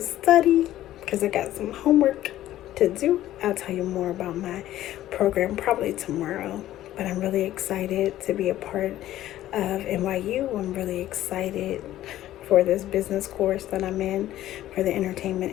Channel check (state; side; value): quieter; right; 13.7 dB